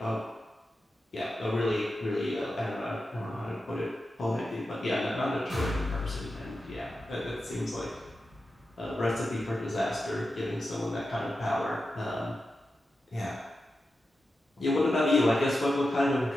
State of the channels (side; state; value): both; normal; correlation 0.90